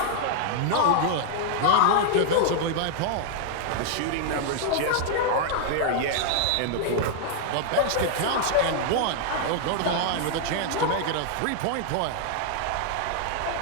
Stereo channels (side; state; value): both; different; correlation -0.01